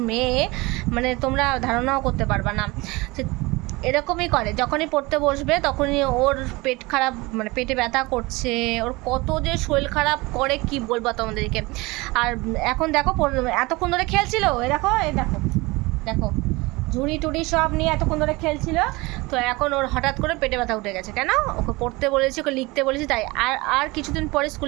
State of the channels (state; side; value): quieter; left; 23.1 dB